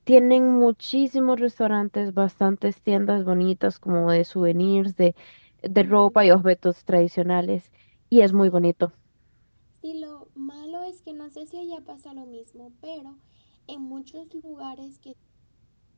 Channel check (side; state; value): both; inverted; correlation -1.00